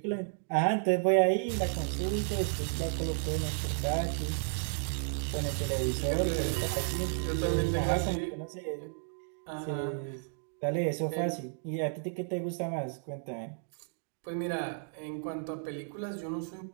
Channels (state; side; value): silent; left; digital silence